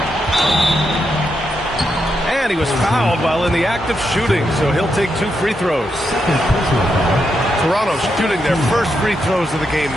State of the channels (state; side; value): normal; both; correlation 0.83